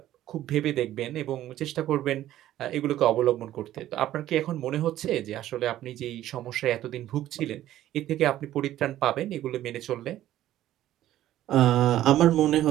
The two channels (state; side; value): quieter; left; 13.3 dB